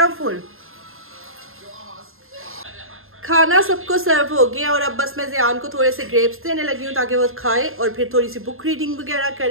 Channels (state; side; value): late; left; 0.61 ms